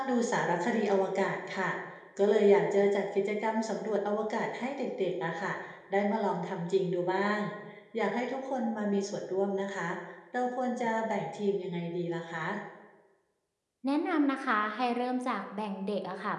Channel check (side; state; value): both; identical; correlation 1.00